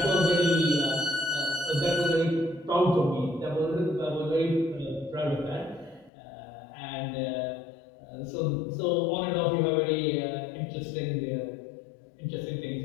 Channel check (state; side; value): drops out; right; at 6.1 s